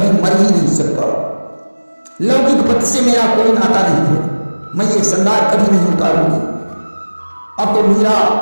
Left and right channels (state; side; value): inverted; both; correlation -1.00